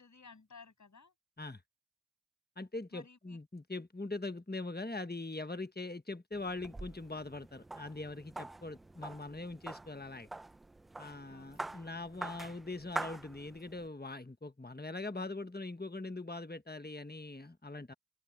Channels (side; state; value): both; normal; correlation 0.63